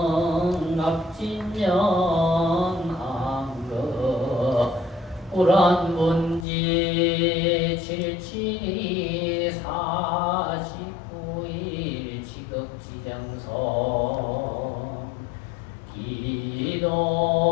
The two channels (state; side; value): drops out; right; at 6.5 s